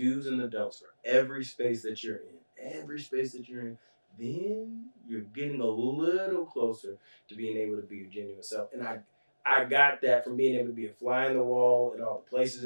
and the don'ts for every space that you're in, then you're getting a little closer to being able to be your genuine self. And I got that from being able to be a fly in the wall at all the places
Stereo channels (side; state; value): both; inverted; correlation -1.00